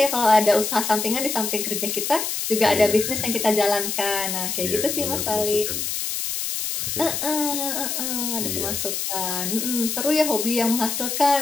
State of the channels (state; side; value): noise; left; hiss, 2 dB below the sound